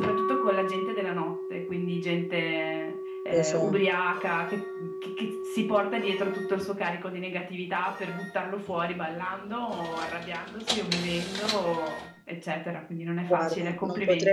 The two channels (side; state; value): both; identical; correlation 1.00